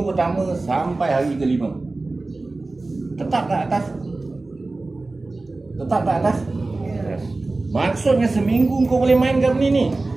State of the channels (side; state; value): left; quieter; 3.3 dB